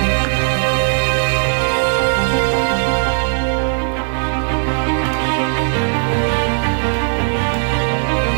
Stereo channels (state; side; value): silent; left; 68 dB below the other